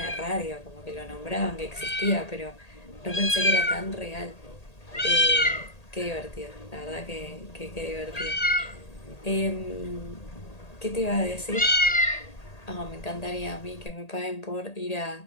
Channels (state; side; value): late; right; 1.8 ms